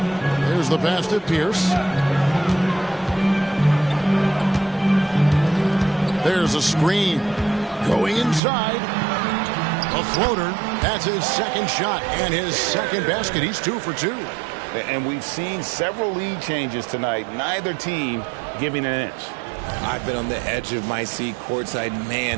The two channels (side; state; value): left; drops out; at 8.4 s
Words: Here's the pass to Pierce. There's a screen. Going inside. A floater. That's his second shot and his second basket. He's 2 for 2. And we've seen several lead changes tonight. Neither team giving an inch. I've been on the edge of my seat courtside.